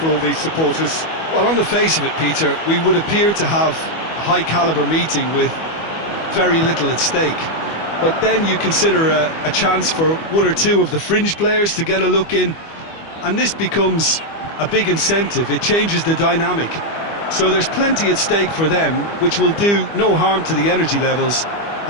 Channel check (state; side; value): late; right; 25 ms